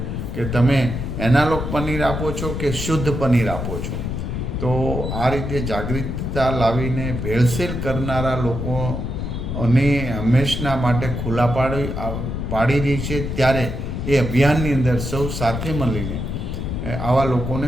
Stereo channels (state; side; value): noise; left; rumble, 4 dB below the sound